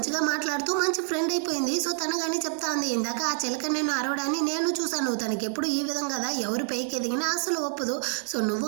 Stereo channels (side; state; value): left; silent; 60 dB below the other